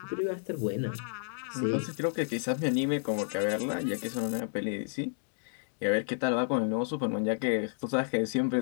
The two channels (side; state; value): right; silent; digital silence